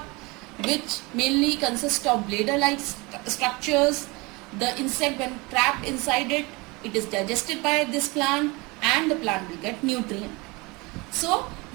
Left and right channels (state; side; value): quieter; left; 25.4 dB